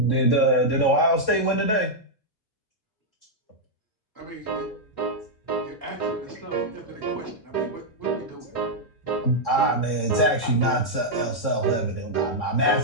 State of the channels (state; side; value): late; right; 3.6 ms